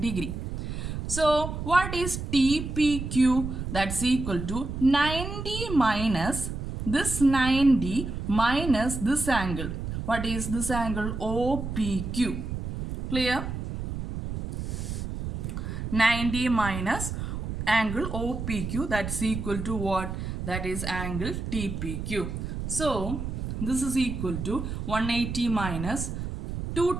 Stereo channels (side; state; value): right; noise; rumble, 5 dB below the sound